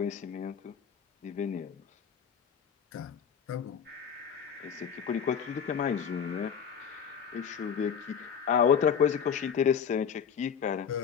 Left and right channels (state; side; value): quieter; right; 7.3 dB